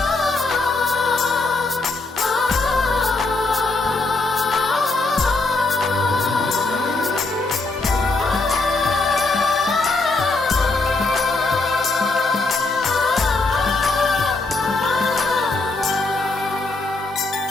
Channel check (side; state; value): right; quieter; 3.3 dB